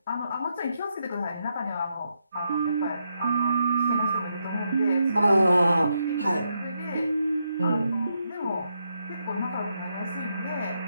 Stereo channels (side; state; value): both; inverted; correlation -0.81